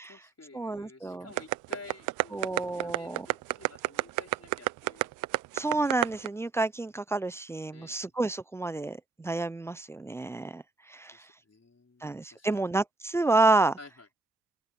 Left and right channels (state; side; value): quieter; left; 3.7 dB